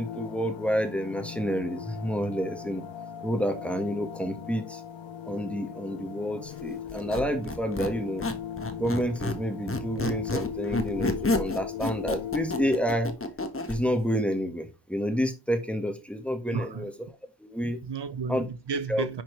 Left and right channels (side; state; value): both; normal; correlation 0.67